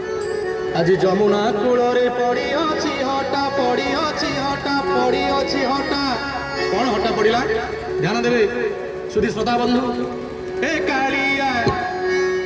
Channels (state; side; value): identical; both; correlation 1.00